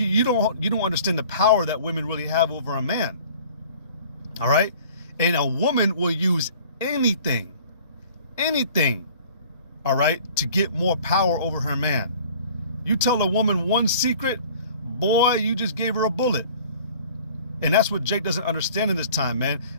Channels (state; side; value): inverted; both; correlation -0.49